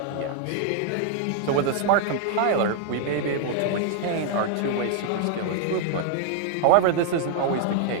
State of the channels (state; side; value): different; both; correlation 0.00